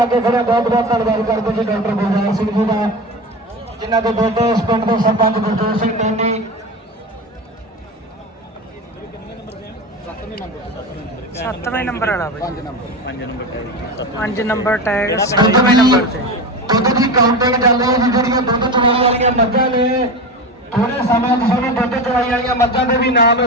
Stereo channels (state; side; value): normal; both; correlation 0.25